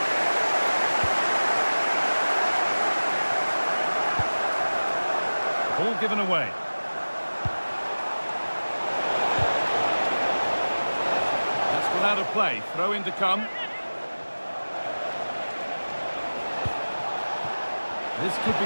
Ball given away. That's gone out of play. Throw in to come. This could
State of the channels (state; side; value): inverted; both; correlation -1.00